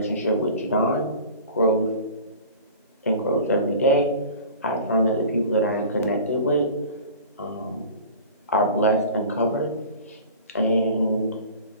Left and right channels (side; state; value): both; inverted; correlation -0.41